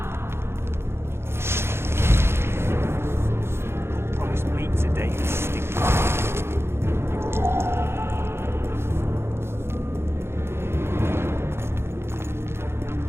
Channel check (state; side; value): late; left; 0.12 ms